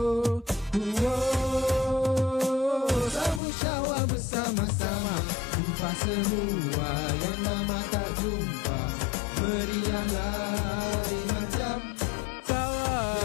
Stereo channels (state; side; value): drops out; right; at 3.4 s